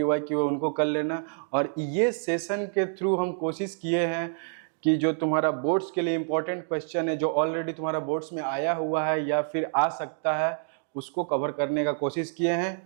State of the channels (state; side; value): silent; left; digital silence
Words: है उनको कर लेना। और ये सेशन के थ्रू हम कोशिश किए हैं कि जो तुम्हारा बोर्ड्स के लिए इम्पोर्टेंट क्वेश्चन है, जो ऑलरेडी तुम्हारा बोर्ड्स में आया हुआ है या फिर आ सकता है, उसको कवर करने का कोशिश किए